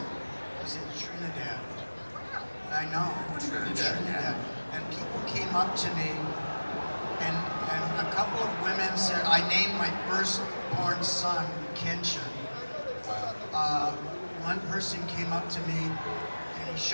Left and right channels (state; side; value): inverted; both; correlation -1.00